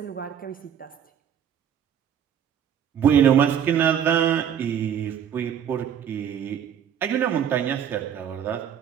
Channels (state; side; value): quieter; left; 8.8 dB